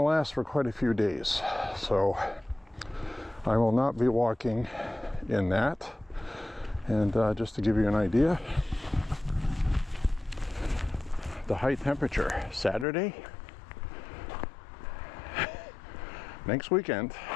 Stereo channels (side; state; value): right; drops out; at 12.9 s